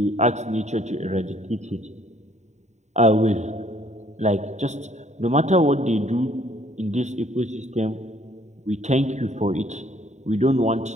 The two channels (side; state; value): left; late; 0.34 ms